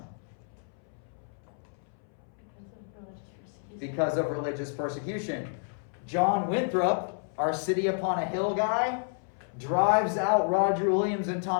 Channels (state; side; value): silent; right; 58 dB below the other